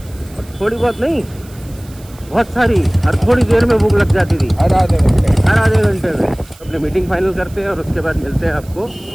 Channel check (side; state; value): right; noise; hiss, 24 dB below the sound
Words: थोड़ी बहुत नहीं, बहुत सारी, हर थोड़ी देर में भूख लग जाती थी, हर आधे घंटे में। अपनी मीटिंग फाइनल करते हैं और उसके बाद मिलते हैं आपको।